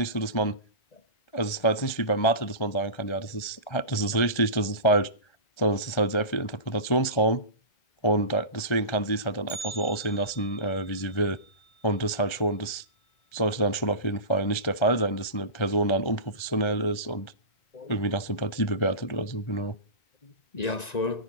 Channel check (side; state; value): right; late; 1.4 ms